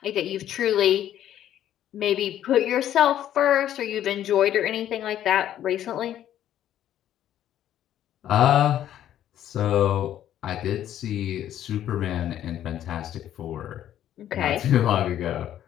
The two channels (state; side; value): quieter; right; 11.4 dB